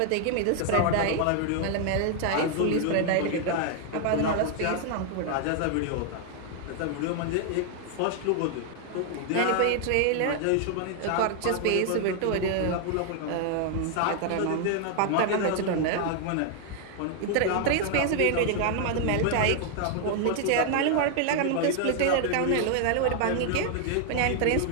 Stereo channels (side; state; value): both; different; correlation 0.00